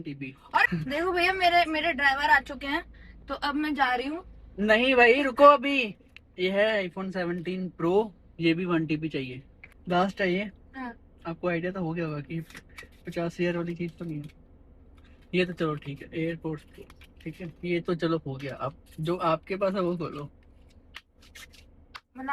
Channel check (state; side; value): identical; both; correlation 1.00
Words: TB। और देखो भैया, मेरे मेरे ड्राइवर आ चुके हैं, तो अब मैं जा रही हूँ। नहीं भाई, रुको अभी। ये है iPhone 17 Pro, ये भी 1 TB चाहिए, लास्ट है ये। हाँ। आपको आइडिया तो हो गया होगा कि 50,000 वाली चीज तो नहीं है ये। तो चलो ठीक है, एयरपोर्ट, ठीक है, ये तो चलो हो गया। अब जो आपके पास है वो खोलो। मतलब